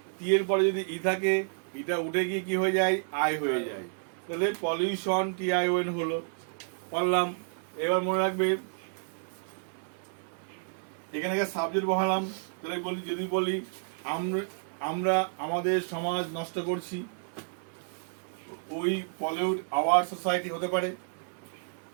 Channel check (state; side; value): silent; left; 57 dB below the other